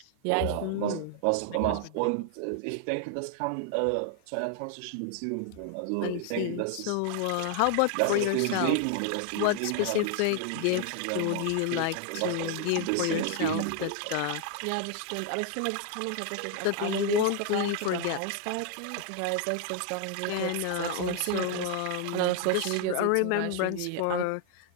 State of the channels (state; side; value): different; both; correlation 0.00